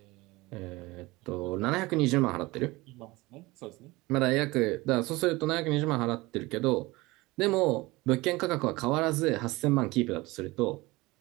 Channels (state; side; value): quieter; left; 21.5 dB